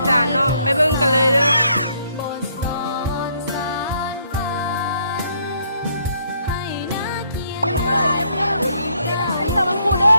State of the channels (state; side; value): inverted; both; correlation -0.69